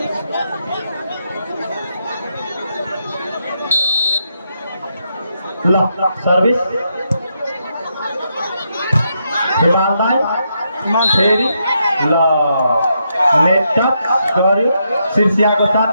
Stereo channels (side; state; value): both; inverted; correlation -0.80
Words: ल सर्भिस हिमाल दाई फेरि ल नेट टच गर्यो सिर्सियाको